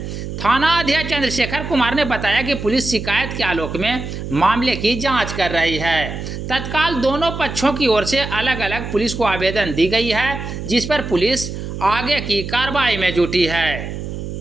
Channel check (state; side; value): noise; right; hum, 7 dB below the sound